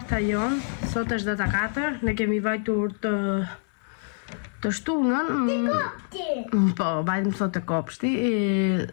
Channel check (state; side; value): silent; right; digital silence